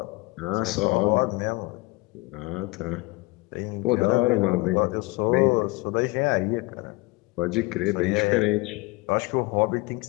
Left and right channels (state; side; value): quieter; right; 23.6 dB